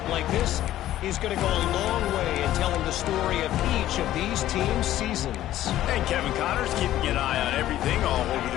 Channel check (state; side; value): quieter; right; 13.4 dB